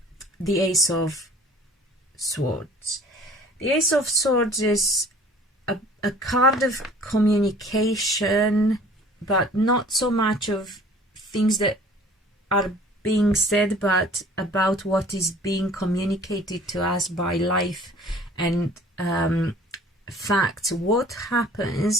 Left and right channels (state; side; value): normal; both; correlation 0.50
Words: Ace of Swords. The Ace of Swords is a card of communication, but not so much of things that are being said, but about what is being communicated to us by life and facts. What